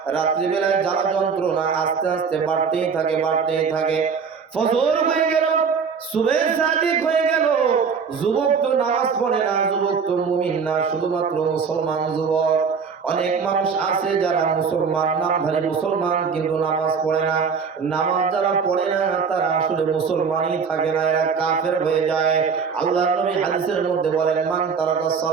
রাত্রিবেলায় জ্বালা যন্ত্রণা আস্তে আস্তে বাড়তেই থাকে, বাড়তেই থাকে। ফজর হয়ে গেল, সুবহে সাদিক হয়ে গেল। যুবক তো নামাজ পড়ে না, যুবক তো মুমিন না, শুধুমাত্র মুসলমান যুবক। অনেক মানুষ আছে যারা মুসলমান, নামধারী মুসলমান, কিন্তু নামাজ পড়ে না। নামাজ যারা পড়ে না তারা আসলে মুসলমানই থাকে না, এরা কাফের হয়ে যায়। আল্লাহর নবী হাদিসের মধ্যে বলেন, মান তারাকাস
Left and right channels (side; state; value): left; quieter; 5.9 dB